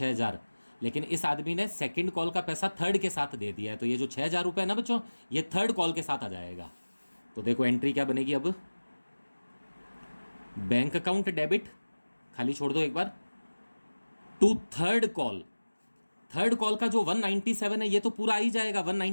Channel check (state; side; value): inverted; both; correlation -1.00